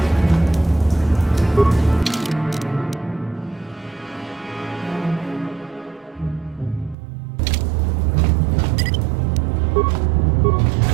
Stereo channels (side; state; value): left; drops out; at 7.0 s